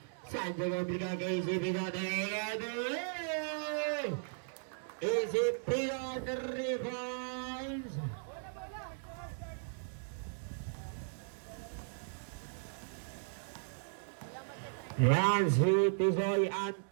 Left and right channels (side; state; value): left; silent; digital silence